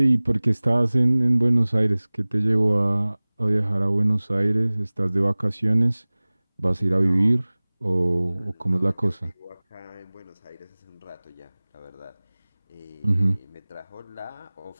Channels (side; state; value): both; inverted; correlation -1.00